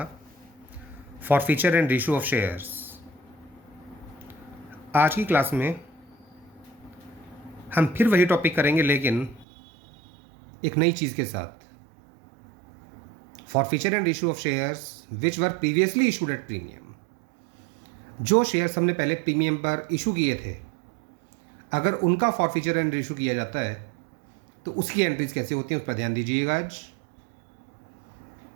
forfeiture and ratio of shares. आज की क्लास में हम फिर वही टॉपिक करेंगे, लेकिन एक नई चीज़ के साथ। Forfeiture and ratio of shares which were previously issued at premium. जो शेयर्स हमने पहले प्रीमियम पर इशू किए थे, अगर उनका फॉरफीचर एंड रेशियो किया जाता है तो उसकी एंट्रीज कैसे होती हैं, उस पर ध्यान दीजिएगा आज।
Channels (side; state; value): left; drops out; at 9.5 s